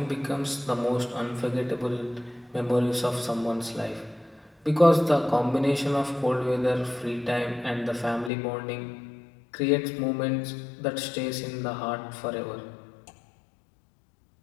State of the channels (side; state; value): right; drops out; at 8.3 s